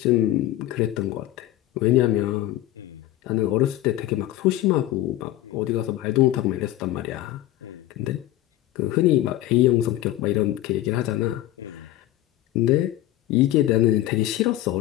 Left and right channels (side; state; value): right; quieter; 14.7 dB